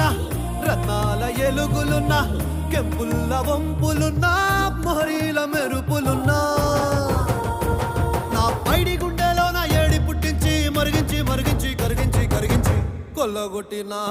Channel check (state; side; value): identical; both; correlation 1.00